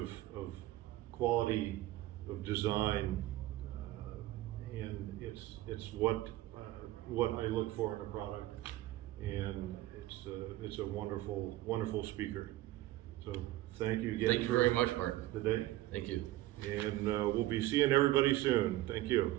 quality of design, and it's what I look for in a product, and it's a wonderful speaker. So thank you again. Thank you very much, Mark. Today, Thank you. and we'll be seeing everybody soon. Thank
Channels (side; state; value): left; quieter; 16.2 dB